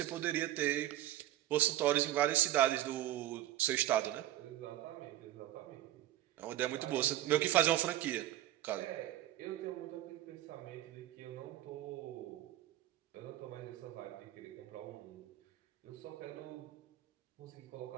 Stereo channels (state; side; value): quieter; left; 13.7 dB